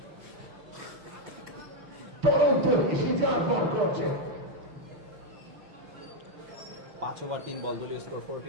টরন্টো সিজার বল করছে। 5 ওভার 3 বল, দলীয় স্কোর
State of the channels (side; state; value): left; late; 6.7 ms